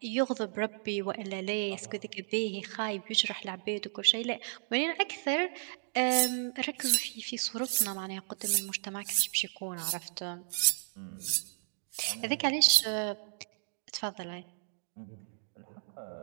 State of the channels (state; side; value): silent; left; digital silence